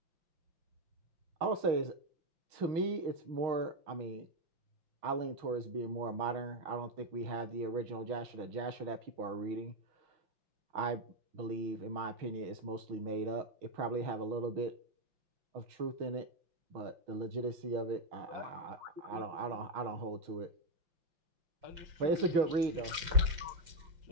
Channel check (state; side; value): late; left; 5.7 ms